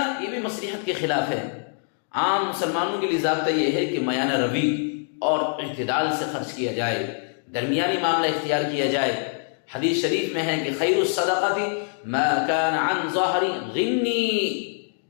یہ بھی مصلحت کے خلاف ہے۔ عام مسلمانوں کے لیے ضابطہ یہ ہے کہ میانہ روی اور اعتدال سے خرچ کیا جائے، درمیانی معاملہ اختیار کیا جائے۔ حدیث شریف میں ہے کہ خیر الصدقات ما کان عن ظہر غنی،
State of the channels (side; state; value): right; silent; 61 dB below the other